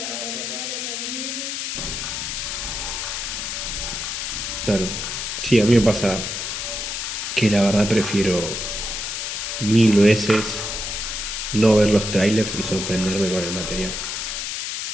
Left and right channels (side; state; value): left; noise; hiss, 4 dB below the sound